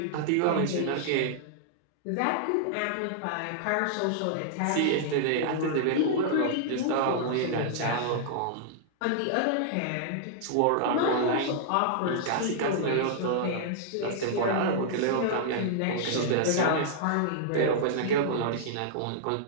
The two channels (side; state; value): both; different; correlation -0.01